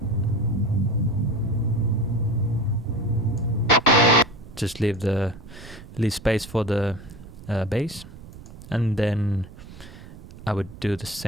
Just leave space for the bass, and then I would do the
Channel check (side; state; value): right; noise; rumble, 17 dB below the sound